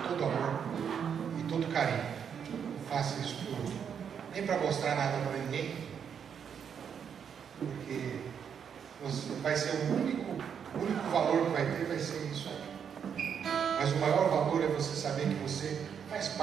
todo amor e todo carinho. Faça isso por nem para mostrar nada para ninguém, porque vai ser o único valor que vai ter, vai ser isso aí. Mas o maior valor é você saber que você faz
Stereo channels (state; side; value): quieter; left; 7.6 dB